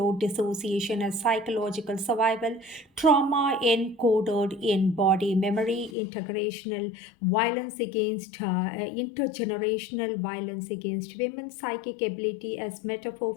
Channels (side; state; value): right; drops out; at 6.0 s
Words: dissociation as psychological survival, trauma encoded in body memory, intergenerational violence against women, psychic ability as metaphor